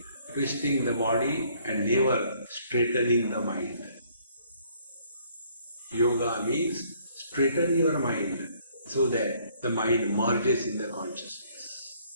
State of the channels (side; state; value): both; inverted; correlation -0.63